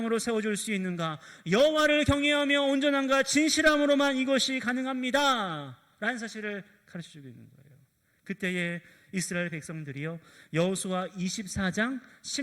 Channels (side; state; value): both; identical; correlation 1.00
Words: 세워줄 수 있는가? 여호와를 경외하며 온전함과 진실함으로만 이것이 가능합니다 라는 사실을 가르쳐주고 있는 거예요. 그때에 이스라엘 백성들이요, 여호수아 24장